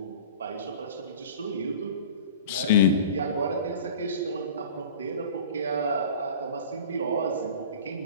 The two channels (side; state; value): both; inverted; correlation -0.39